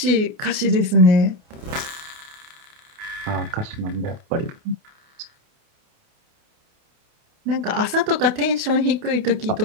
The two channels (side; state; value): left; late; 29 ms